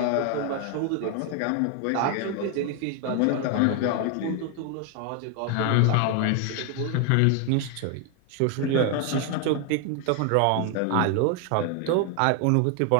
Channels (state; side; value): different; both; correlation 0.01